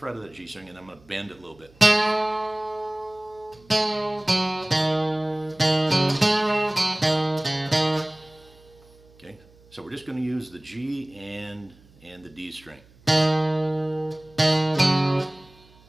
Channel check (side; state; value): right; noise; hum, 27 dB below the sound